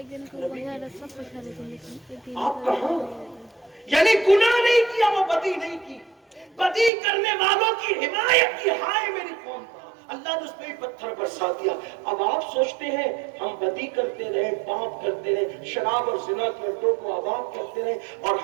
آپ کہاں؟ یعنی گناہ نہیں کیا، وہ بدی نہیں کی، بدی کرنے والوں کی حمایت کی، ہائے میری قوم کا، اللہ نے اس پہ بھی پتھر برسا دیا۔ اب آپ سوچتے ہیں ہم بدی کرتے رہے، پاپ کرتے رہے، شراب اور زنا کے اڈوں کو آباد کرتے رہے اور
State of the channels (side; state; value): left; drops out; at 6.9 s